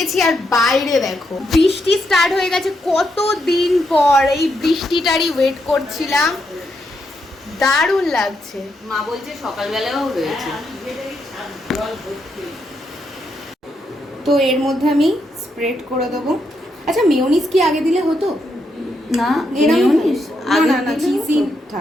আর বাইরে দেখো বৃষ্টি স্টার্ট হয়ে গেছে, কত দিন পর এই বৃষ্টিটারই ওয়েট করছিলাম। দারুণ লাগছে। মা বলছে সকালবেলাও রয়েছে। তো এর মধ্যে আমি স্প্রেড করে দেবো। আচ্ছা মেয়োনিজ কি আগে দিলে হতো? না মেয়োনিজ আগে না না চিজি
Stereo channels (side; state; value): both; normal; correlation 0.80